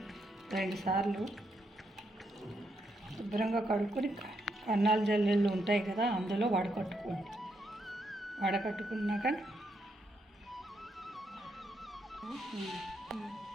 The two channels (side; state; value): both; normal; correlation 0.79